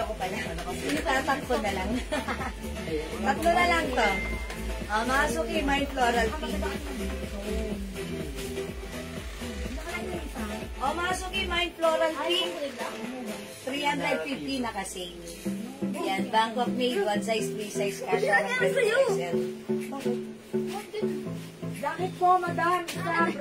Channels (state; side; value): identical; both; correlation 1.00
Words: pala. Itatak ko na lang. Tatlo na lang to. Mga suki, mine Floral Pink. O, mga suki, mine Floral Pink. 350 na kasi. Yan, Bangkok made, one size, three size, kasha ng 20%. Jacket po, madam. Isa